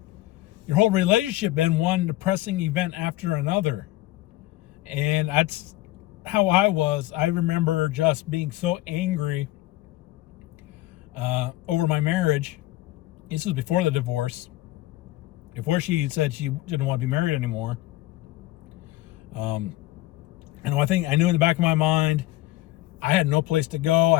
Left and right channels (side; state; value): right; quieter; 16.8 dB